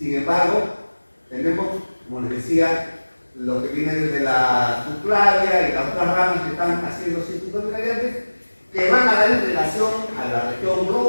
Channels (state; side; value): inverted; both; correlation -1.00